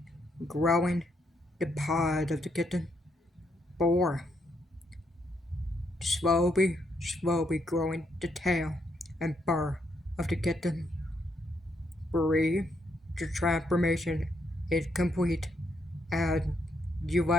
growing the paws of the kitten. 4. Slowly growing the tail and fur of the kitten. 3. The transformation is complete and you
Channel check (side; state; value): both; normal; correlation 0.77